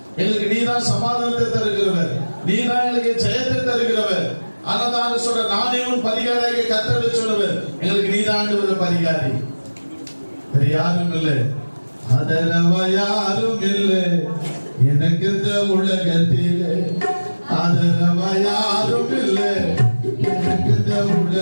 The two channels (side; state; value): both; inverted; correlation -1.00